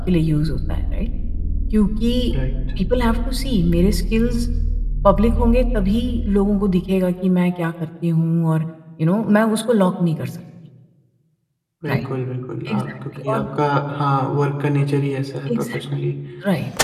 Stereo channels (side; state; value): both; identical; correlation 1.00